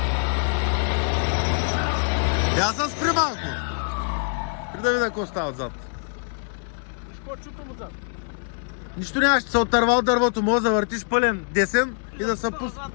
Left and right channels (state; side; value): silent; right; digital silence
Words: Аз съм спри малко. При да видя какво става отзад. Виж какво чутам отзад. Нищо нямаш, ще се отърва от дървото, може да въртиш пълен десен и да се пусне.